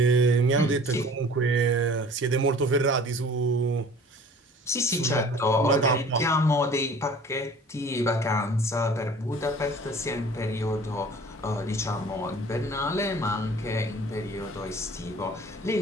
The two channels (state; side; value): normal; both; correlation 0.47